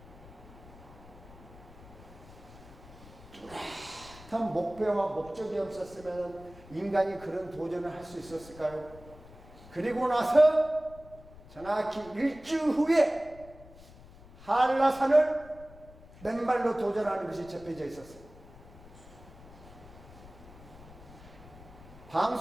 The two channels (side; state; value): left; noise; rumble, 19 dB below the sound